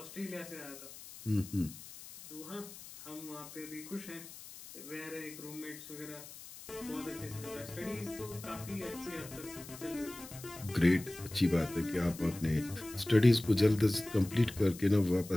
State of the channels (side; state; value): left; noise; hiss, 15 dB below the sound